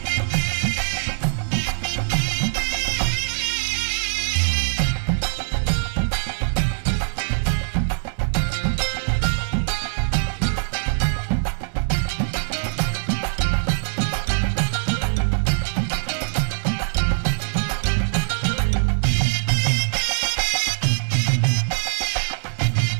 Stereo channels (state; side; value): silent; left; 63 dB below the other